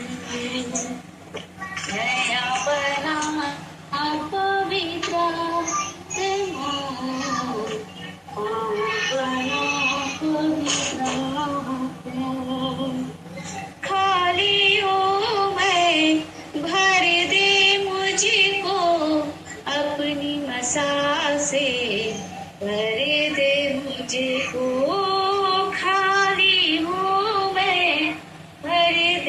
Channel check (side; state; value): both; identical; correlation 1.00